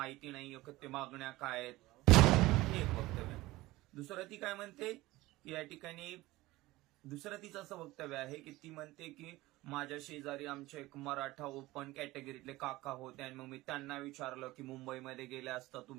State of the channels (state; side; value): quieter; left; 18.9 dB